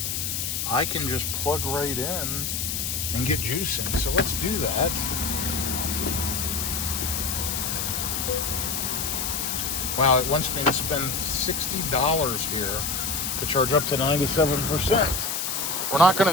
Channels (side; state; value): left; noise; hiss, 1 dB below the sound